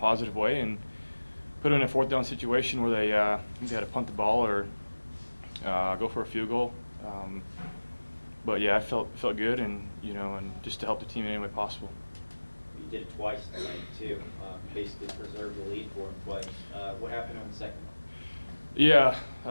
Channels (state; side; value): inverted; both; correlation -1.00